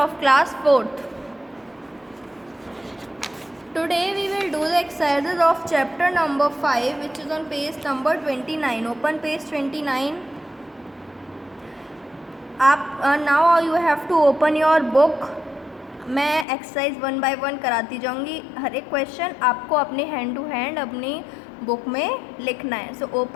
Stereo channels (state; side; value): drops out; right; at 16.4 s